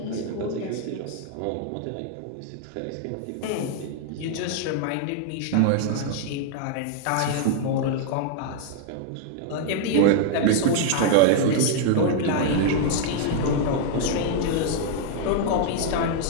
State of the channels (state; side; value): different; both; correlation 0.00